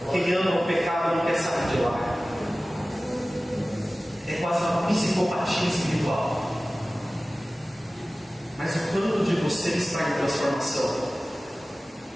Quem ama o pecado não quer sair de lá. É quase uma psicopatia espiritual. Mas o quanto de você está em transformação?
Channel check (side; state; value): both; normal; correlation 0.97